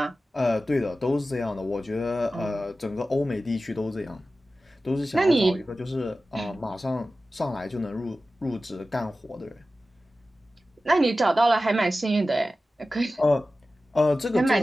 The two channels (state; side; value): normal; both; correlation 0.94